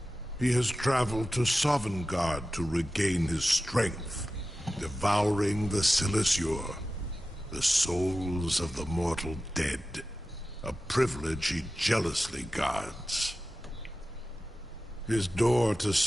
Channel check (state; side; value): normal; both; correlation 0.94